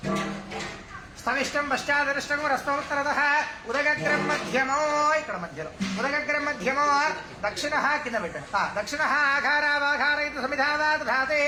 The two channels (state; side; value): identical; both; correlation 1.00